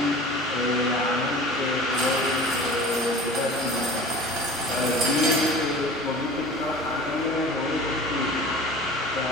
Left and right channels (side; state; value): both; normal; correlation 0.40